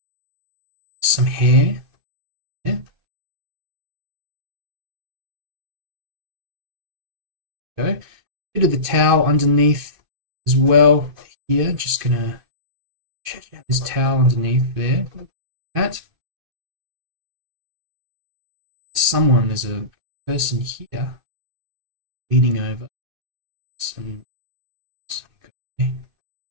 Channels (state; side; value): late; left; 2.5 ms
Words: Some hair. Yeah. Go. Bit of the towel underneath as well. Here, just gonna check out this towel underneath there. That. There's a person here leaning over.